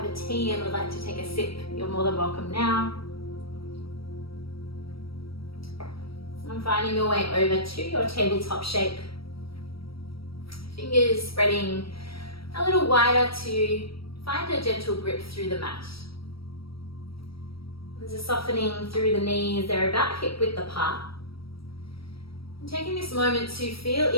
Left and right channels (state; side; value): late; right; 0.75 ms